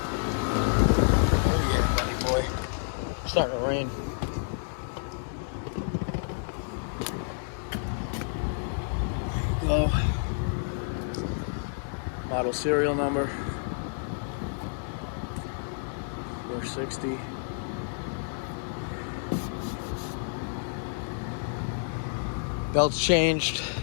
Oh yeah, buddy boy. It's starting to rain. There you go. Model serial number 460. Belts changed.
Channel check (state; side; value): silent; right; digital silence